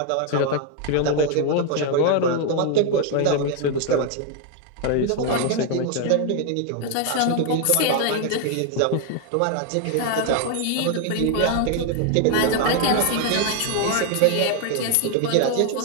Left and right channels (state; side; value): different; both; correlation 0.00